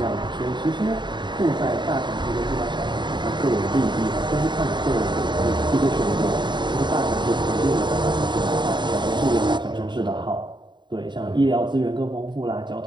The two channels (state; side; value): late; left; 0.22 ms